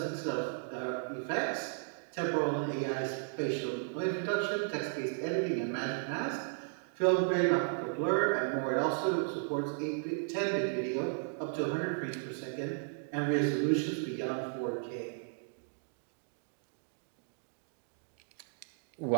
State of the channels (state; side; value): silent; left; digital silence